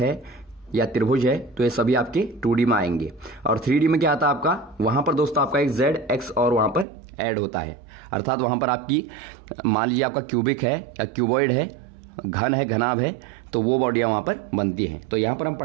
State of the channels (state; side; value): drops out; left; at 6.9 s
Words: या त्रिभुज है, तो ये सभी आपके 2D में आएंगे। और 3D में क्या आता है आपका, वहां पर दोस्तों आपका एक Z, X और वहां पर ऐड होता है। अर्थात वहां पर आपकी मान लीजिए आपका क्यूबिक है या क्यूबॉइड है, घन है, घनाभ है, तो वो बॉडियां वहां पर बनती हैं। तो यहां पर हम